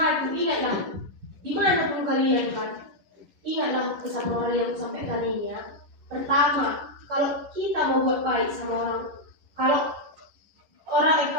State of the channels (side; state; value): left; late; 11 ms